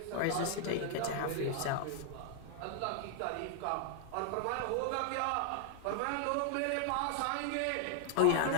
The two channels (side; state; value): both; different; correlation 0.00